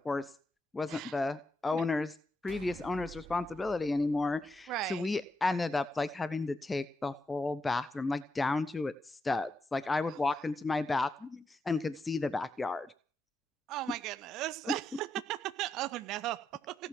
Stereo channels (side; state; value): both; normal; correlation 0.83